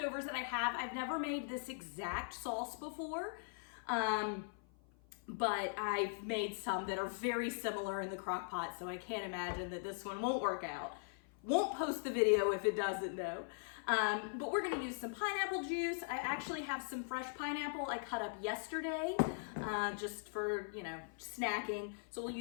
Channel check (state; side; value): silent; right; 51 dB below the other